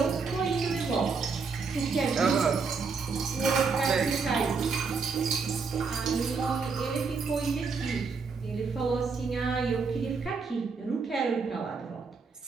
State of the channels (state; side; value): quieter; left; 5.0 dB